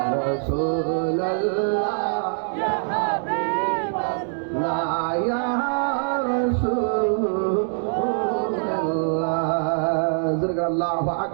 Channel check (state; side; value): silent; left; digital silence